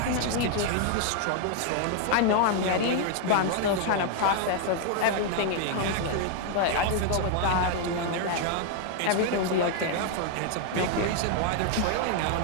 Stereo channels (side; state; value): both; different; correlation 0.00